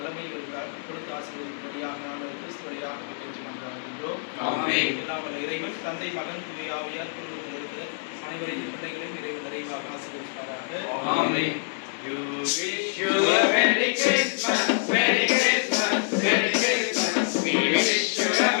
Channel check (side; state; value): right; silent; 61 dB below the other